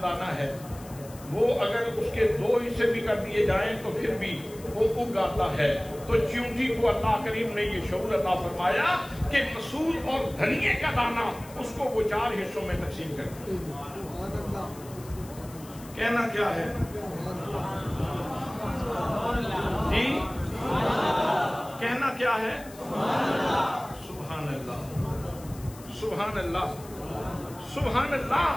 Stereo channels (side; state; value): left; noise; hiss, 20 dB below the sound